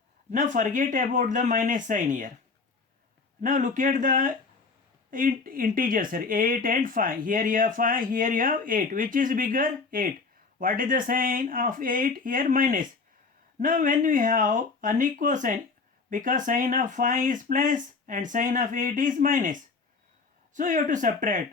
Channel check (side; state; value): right; quieter; 4.4 dB